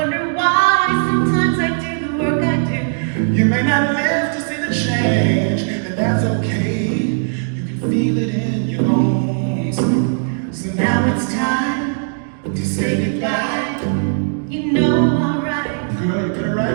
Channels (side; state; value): left; silent; digital silence